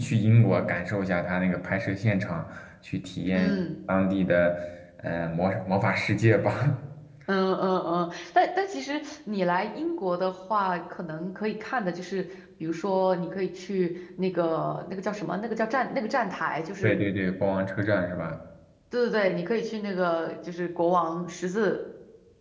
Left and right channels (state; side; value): identical; both; correlation 1.00